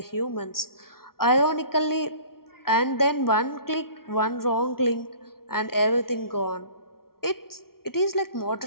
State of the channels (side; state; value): right; late; 0.93 ms